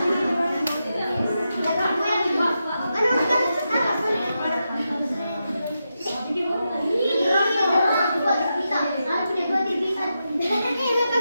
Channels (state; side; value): inverted; both; correlation -0.87